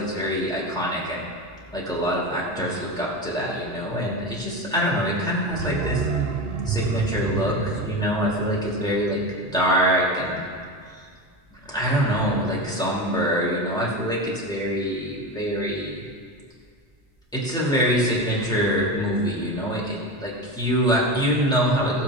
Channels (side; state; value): both; normal; correlation 0.23